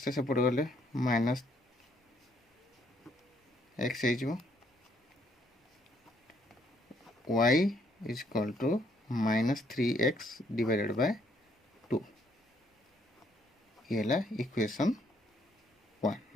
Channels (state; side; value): normal; both; correlation 0.69